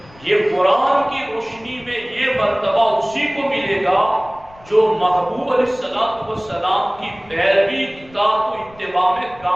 یہ قرآن کی روشنی میں یہ مرتبہ اسی کو ملے گا جو محبوب علیہ السلام کی پیروی، اطاعت و اتباع میں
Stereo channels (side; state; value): left; noise; rumble, 25 dB below the sound